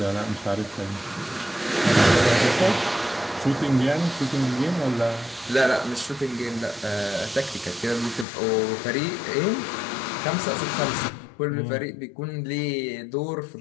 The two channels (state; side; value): drops out; right; at 8.2 s